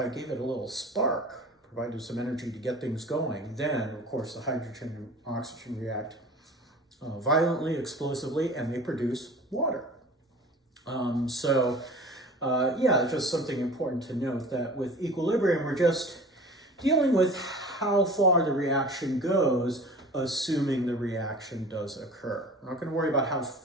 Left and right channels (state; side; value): normal; both; correlation 0.41